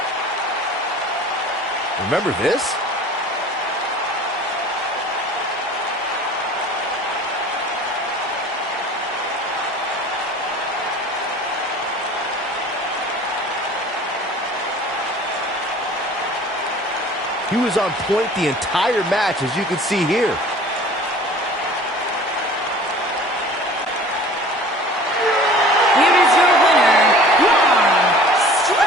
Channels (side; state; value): both; normal; correlation 0.45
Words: Remember this? He was on point the entire match, as you can see here. Here is your winner, Braun